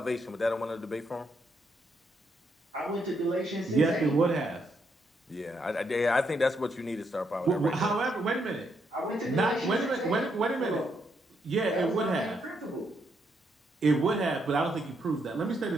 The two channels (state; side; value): normal; both; correlation 0.77